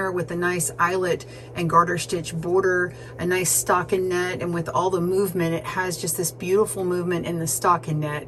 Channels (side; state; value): both; identical; correlation 1.00